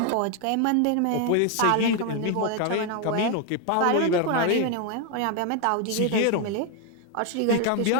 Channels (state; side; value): different; both; correlation 0.01